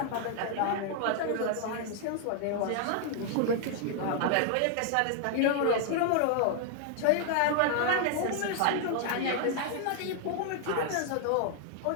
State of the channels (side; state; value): both; different; correlation 0.00